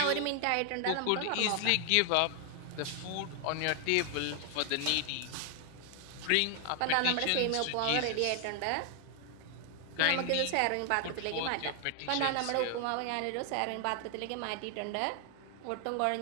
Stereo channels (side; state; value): both; different; correlation 0.00